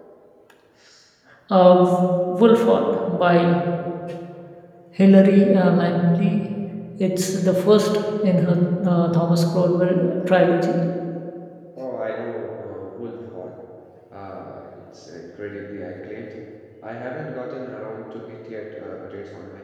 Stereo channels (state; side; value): identical; both; correlation 1.00